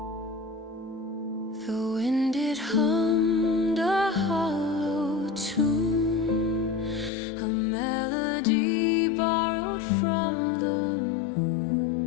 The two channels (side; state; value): right; drops out; at 7.1 s